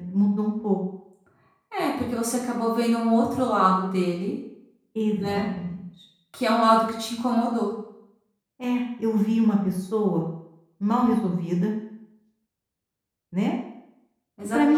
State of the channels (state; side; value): identical; both; correlation 1.00